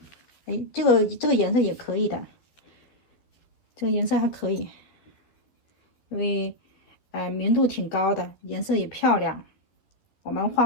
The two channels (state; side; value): late; right; 12 ms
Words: 哎，这个颜色也可以的，这个颜色还可以，因为明度挺高的，颜色也漂亮。我们